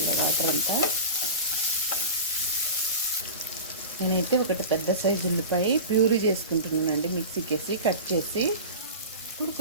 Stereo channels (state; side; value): inverted; both; correlation -0.31